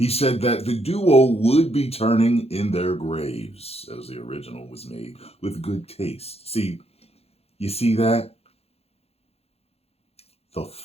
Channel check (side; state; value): right; late; 0.29 ms